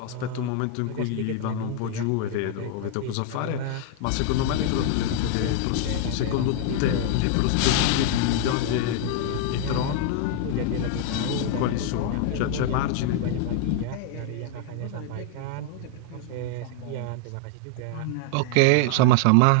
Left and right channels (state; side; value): different; both; correlation -0.01